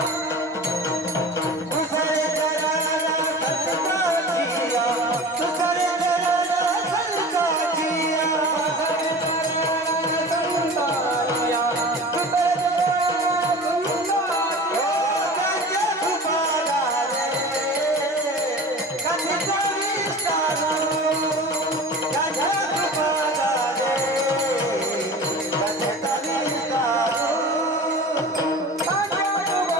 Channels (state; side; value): normal; both; correlation 0.36